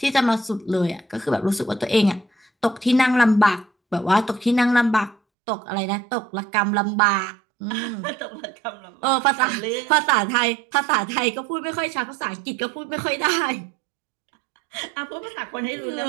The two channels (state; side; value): drops out; left; at 5.2 s